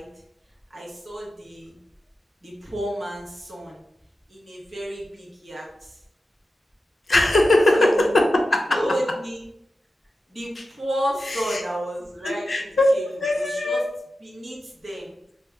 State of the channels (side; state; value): both; normal; correlation 0.92